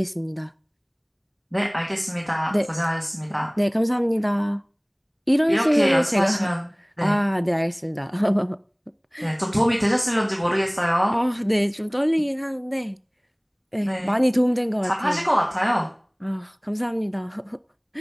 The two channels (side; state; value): both; identical; correlation 1.00